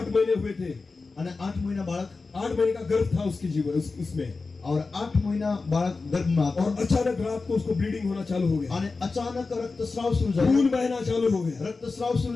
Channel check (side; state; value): right; quieter; 4.0 dB